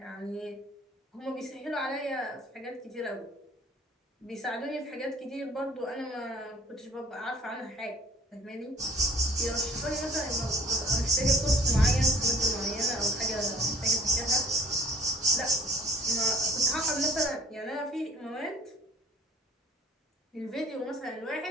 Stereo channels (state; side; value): normal; both; correlation 0.52